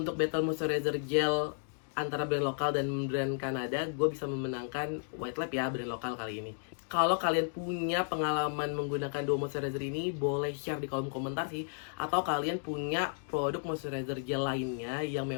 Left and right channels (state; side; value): silent; right; digital silence